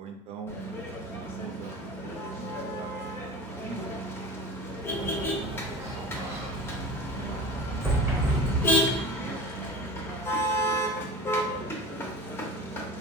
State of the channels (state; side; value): normal; both; correlation 0.34